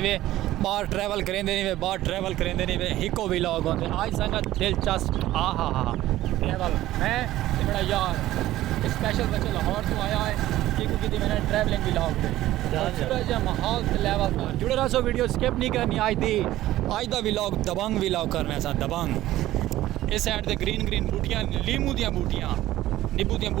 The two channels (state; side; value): quieter; left; 15.1 dB